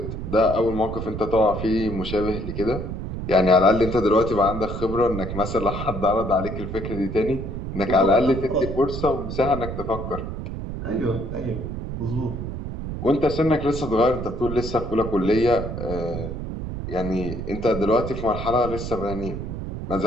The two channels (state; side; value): noise; right; rumble, 6 dB below the sound